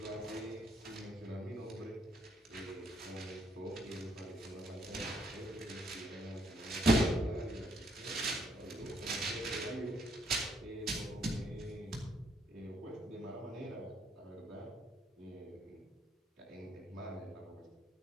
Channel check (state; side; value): normal; both; correlation 0.71